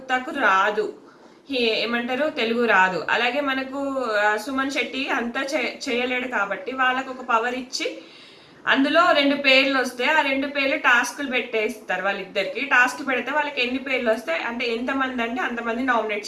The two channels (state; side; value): identical; both; correlation 1.00